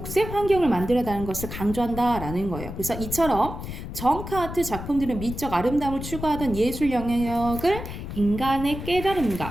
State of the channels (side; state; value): left; noise; rumble, 8 dB below the sound